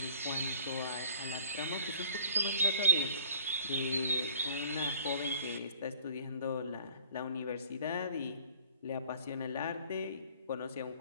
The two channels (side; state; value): both; inverted; correlation -0.48